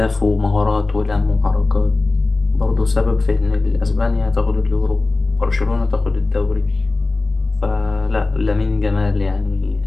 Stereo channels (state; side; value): quieter; right; 3.4 dB